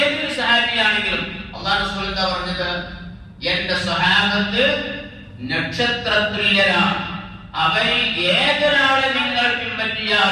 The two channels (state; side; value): identical; both; correlation 1.00